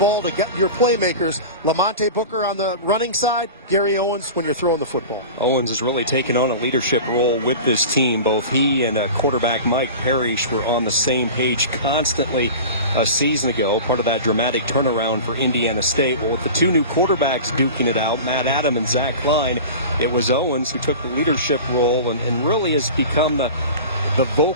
to get your playmakers. Lamonte Booker on the running side, Gary Owens when you're throwing the football. Owens has really taken on a leadership role with this team. Both he and quarterback Mike Parrish were on the same page constantly a season ago, part of that dramatic turnaround for Indiana State. Well, with the two new quarterbacks duking it out, Matt Adam and Zach Klein, it was Owens who took the leadership role and really has become the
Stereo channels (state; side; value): inverted; both; correlation -0.34